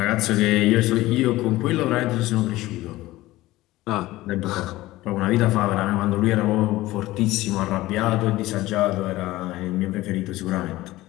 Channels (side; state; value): right; quieter; 17.6 dB